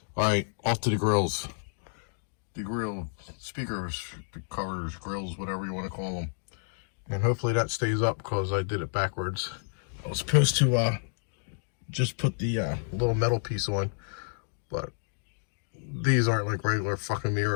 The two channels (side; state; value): right; silent; digital silence